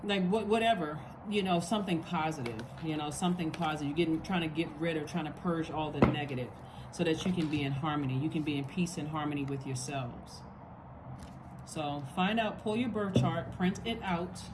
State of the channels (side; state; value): both; identical; correlation 1.00